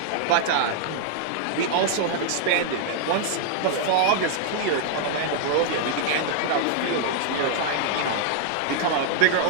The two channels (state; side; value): different; both; correlation -0.01